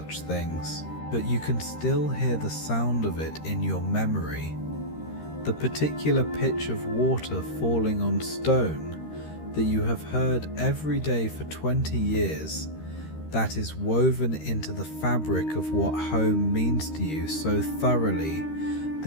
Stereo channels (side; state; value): right; late; 13 ms